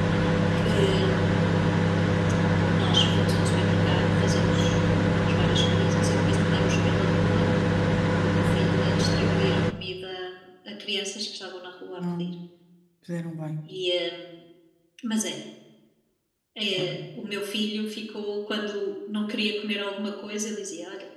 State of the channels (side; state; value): both; identical; correlation 1.00